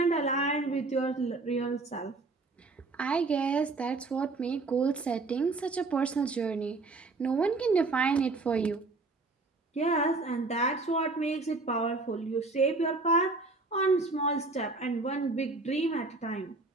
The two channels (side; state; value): left; quieter; 3.5 dB